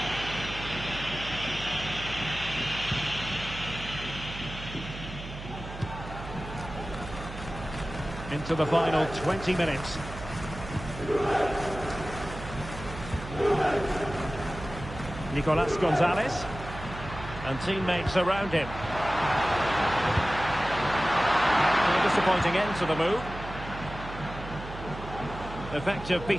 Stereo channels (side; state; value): right; noise; hum, 11 dB below the sound